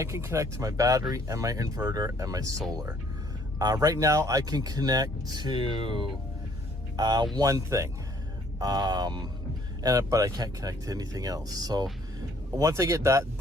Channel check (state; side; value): normal; both; correlation 0.62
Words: can connect to my battery and my inverter and my solar. Right now I can connect to one thing. But I can't connect to anything else. So once I get that,